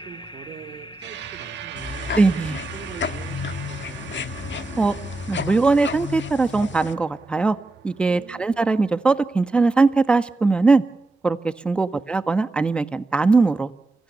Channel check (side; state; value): left; quieter; 3.1 dB